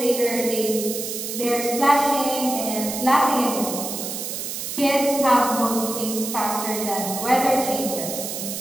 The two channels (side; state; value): right; noise; hiss, 5 dB below the sound